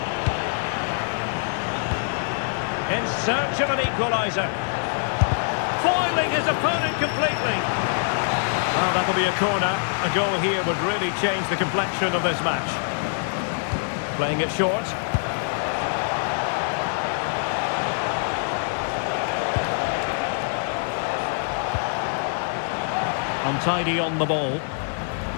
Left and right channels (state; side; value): silent; right; digital silence